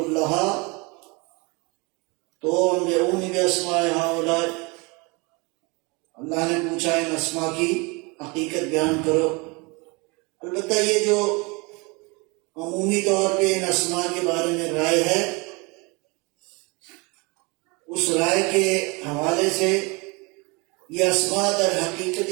تو انبئونی باسماء ہؤلاء، اللہ نے پوچھا ان اسماء کی حقیقت بیان کرو۔ البتہ یہ جو عمومی طور پہ ان اسماء کے بارے میں رائے ہے، اس رائے کے حوالے سے یہ اسماء در حقیقت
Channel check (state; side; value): quieter; left; 27.9 dB